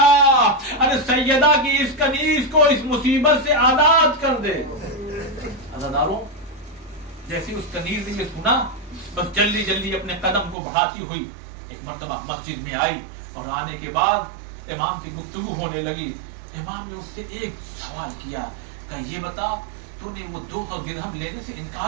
ارے سیدہ کی اس کنیز کو اس مصیبت سے آزاد کر دے. عزاداروں جیسے اس کنیز نے یہ سنا بس جلدی جلدی اپنے قدم کو بڑھاتی ہوئی ایک مرتبہ مسجد میں آئی. اور آنے کے بعد امام کی گفتگو ہونے لگی. امام نے اس سے ایک سوال کیا کہ یہ بتا تو نے وہ 200 درہم لینے سے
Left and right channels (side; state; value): left; drops out; at 10.6 s